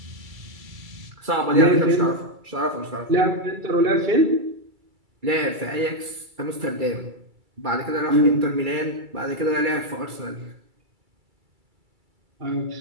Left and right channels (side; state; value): left; late; 2.3 ms